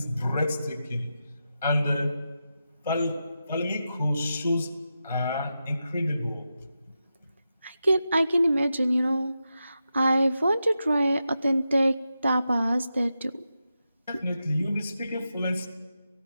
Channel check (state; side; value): inverted; both; correlation -0.89